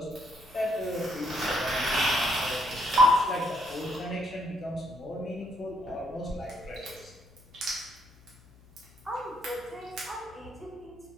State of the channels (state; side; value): noise; left; hum, 25 dB below the sound